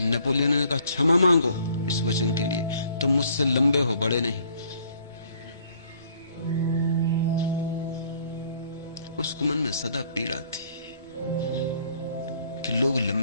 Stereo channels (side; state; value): both; inverted; correlation -0.61